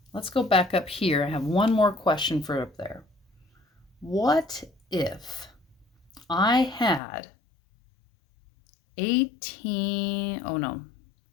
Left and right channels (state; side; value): drops out; right; at 7.0 s